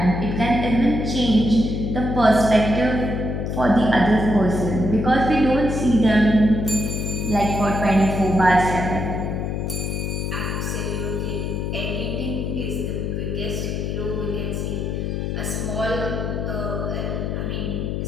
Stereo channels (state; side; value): noise; left; hum, 2 dB below the sound